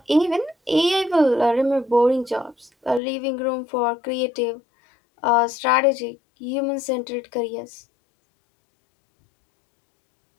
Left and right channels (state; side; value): drops out; right; at 3.0 s